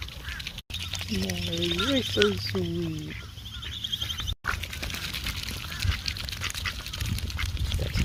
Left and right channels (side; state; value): both; identical; correlation 1.00